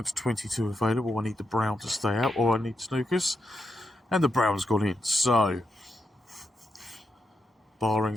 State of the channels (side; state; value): both; normal; correlation 0.84